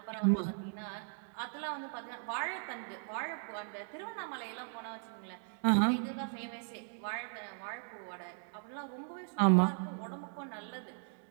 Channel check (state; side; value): silent; left; 53 dB below the other